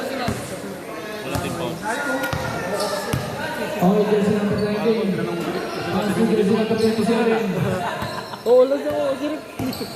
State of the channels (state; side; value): identical; both; correlation 1.00